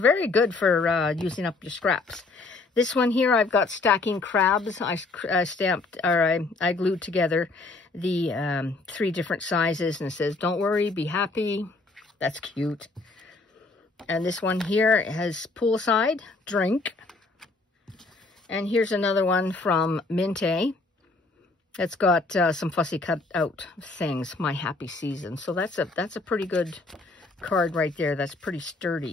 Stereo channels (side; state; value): right; quieter; 3.6 dB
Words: good for using up your scraps. This one here, I've got stacking crabs. I glued together the 3 different sizes, and it says, "Don't worry, be happy." That's cute. And this one here has poolside, drink. And here's another one from Mintay. It's got some fussy cut out things, My Happy Season. So that's a pretty good card right there. That's pretty